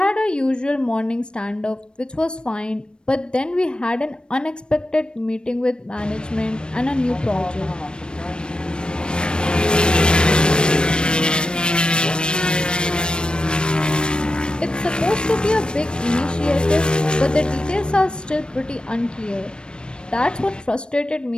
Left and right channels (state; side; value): late; right; 0.053 ms